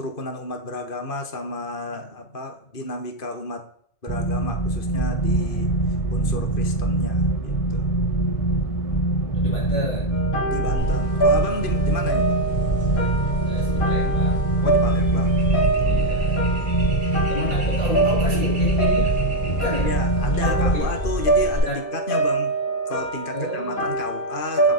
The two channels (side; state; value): right; late; 2.5 ms